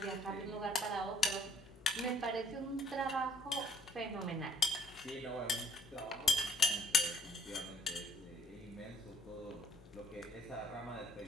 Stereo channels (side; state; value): both; normal; correlation 0.59